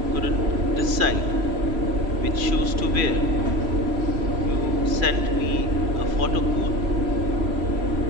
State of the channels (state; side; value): late; left; 3.0 ms